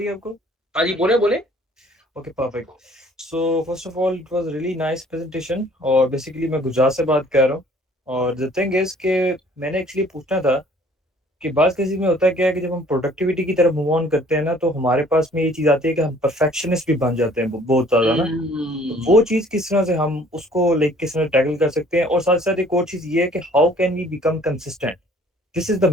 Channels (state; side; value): normal; both; correlation 0.56